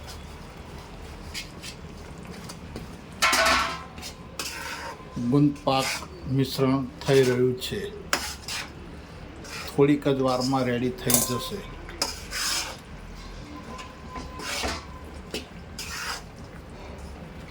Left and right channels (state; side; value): identical; both; correlation 1.00